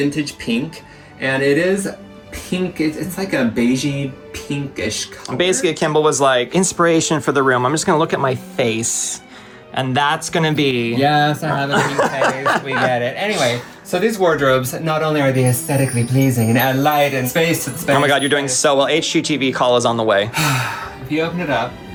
Pink, and it is pink. It's like a beigey pinkish color. Basically, Kimball was like, inspiration for the room. I'm just gonna look at my face, and that's gonna be... Yes, I have a pink face. We get it. Anyway, so these wardrobes, not only are they aesthetically pleasing and add light and space to the space. Oh my God, you're doing so well. HGTV call is on the way. If you open it up,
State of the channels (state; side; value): identical; both; correlation 1.00